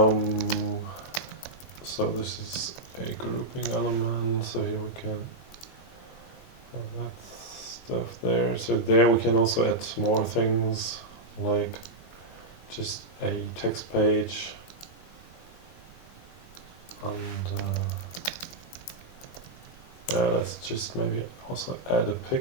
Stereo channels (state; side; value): late; right; 17 ms